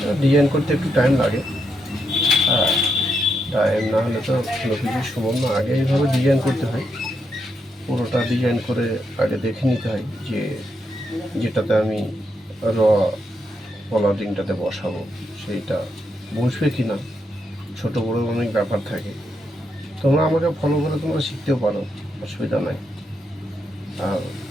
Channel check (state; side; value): normal; both; correlation 0.81